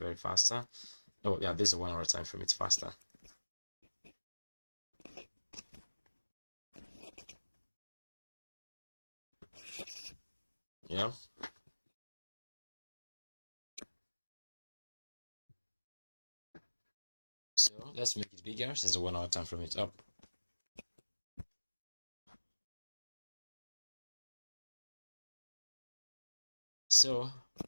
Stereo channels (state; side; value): inverted; both; correlation -1.00